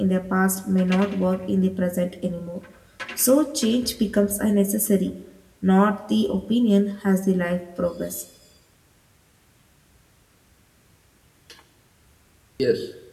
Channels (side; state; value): both; identical; correlation 1.00